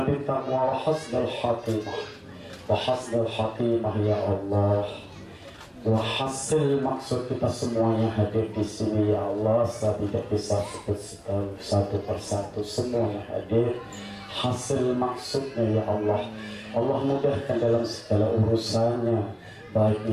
bit taqwa wa hasnal khatimah wa hasnal khatimah ya Allah. Wa hasil maksud kita semuanya hadir di sini ya Allah. Saya tidak bisa sebut satu persatu, semuanya hadir. Hasil maksudnya ya Allah, Allah mudahkan dalam segala urusannya, baik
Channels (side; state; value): both; identical; correlation 1.00